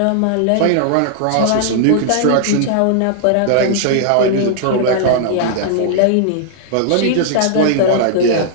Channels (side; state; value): both; different; correlation -0.01